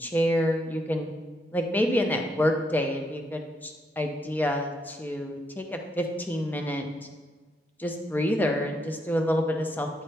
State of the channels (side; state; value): both; normal; correlation 0.77